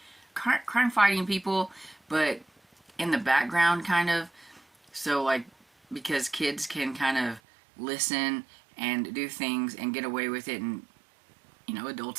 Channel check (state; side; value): drops out; left; at 7.4 s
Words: crime-fighting people, but in the background, kind of. So, like, because kids can kind of listen and do things and get away with it, and,